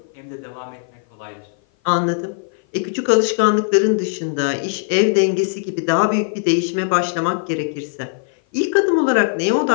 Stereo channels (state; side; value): silent; right; 56 dB below the other